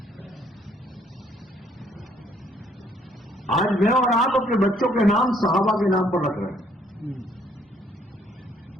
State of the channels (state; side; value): normal; both; correlation 0.65